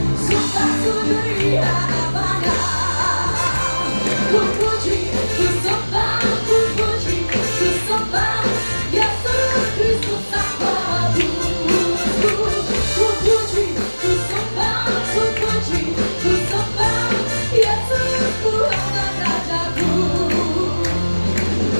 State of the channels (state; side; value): inverted; both; correlation -1.00